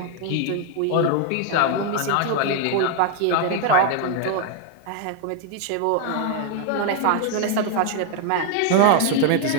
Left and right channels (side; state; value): both; different; correlation 0.00